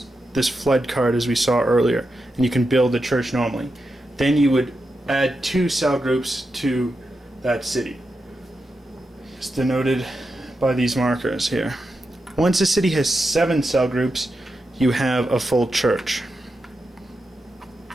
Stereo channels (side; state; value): both; normal; correlation 0.88